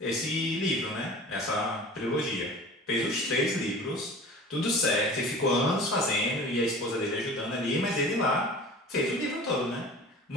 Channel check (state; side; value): normal; both; correlation 0.40